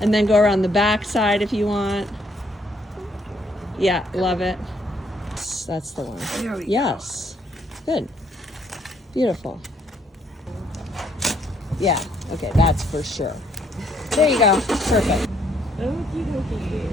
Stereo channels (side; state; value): both; normal; correlation 0.68